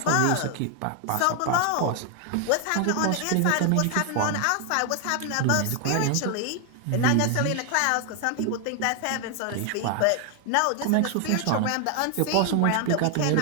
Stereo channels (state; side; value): different; both; correlation 0.00